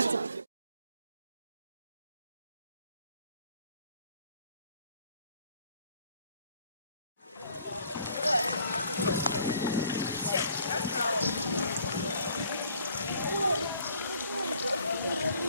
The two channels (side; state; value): both; inverted; correlation -0.60